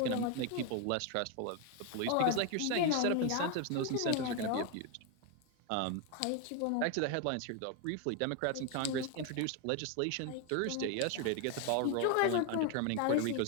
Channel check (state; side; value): different; both; correlation 0.01